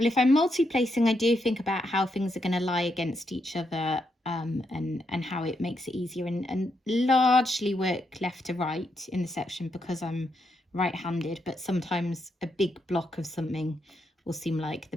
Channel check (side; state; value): both; normal; correlation 0.80